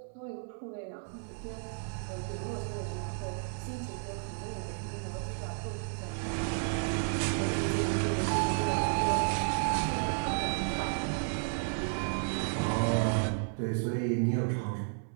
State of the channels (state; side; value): silent; left; 56 dB below the other